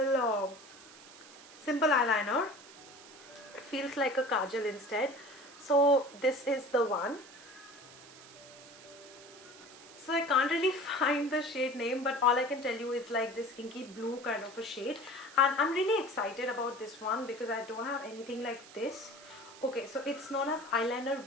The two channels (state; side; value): noise; right; hiss, 19 dB below the sound